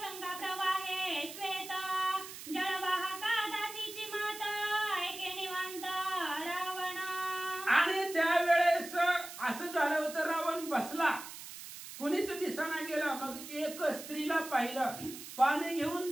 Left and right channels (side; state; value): right; noise; hiss, 12 dB below the sound